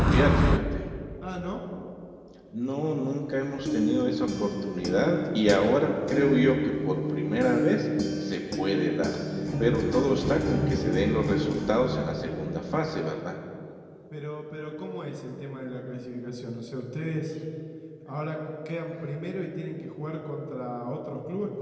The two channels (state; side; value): identical; both; correlation 1.00